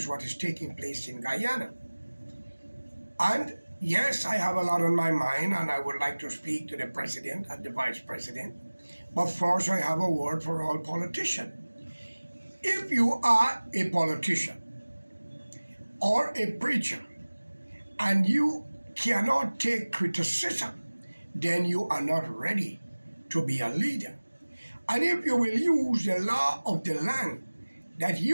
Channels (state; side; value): inverted; both; correlation -1.00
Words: what is taking place in Guyana. And yes, I have a lot on my mind and I would like to speak to the president and the vice president. But first I have a word for all politicians. If you are a politician or a preacher and you cannot take criticism, then you are not ready to be a leader. And if you will use the law of the land that